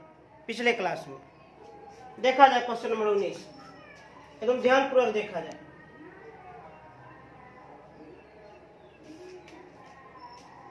पिछले क्लास में। देखा जाए क्वेश्चन नंबर 19, एकदम ध्यानपूर्वक देखा जाए।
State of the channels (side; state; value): both; identical; correlation 1.00